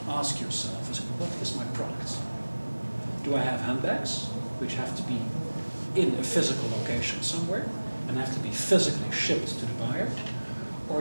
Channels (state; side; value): inverted; both; correlation -1.00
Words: ask yourself is, what is my product? Do I have handbags, which have to be in a physical location somewhere and have to be physically shipped to the buyer?